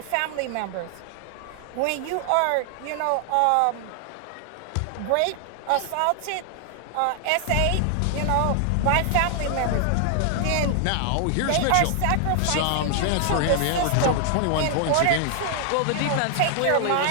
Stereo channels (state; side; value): different; both; correlation 0.00